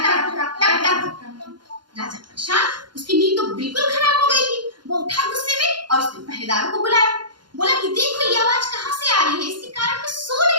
टक टक टक। राजा परेशान, उसकी नींद तो बिल्कुल खराब हो गई थी। वो उठा गुस्से में और उसने पहरेदारों को बुलाया। बोला कि देखो ये आवाज कहाँ से आ रही है, इसके कारण मैं सो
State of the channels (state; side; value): late; left; 0.71 ms